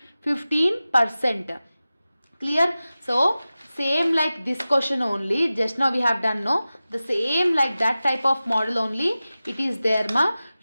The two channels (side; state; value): both; inverted; correlation -0.96